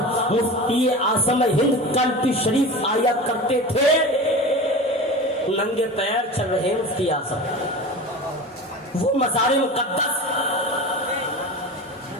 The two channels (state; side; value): normal; both; correlation 0.32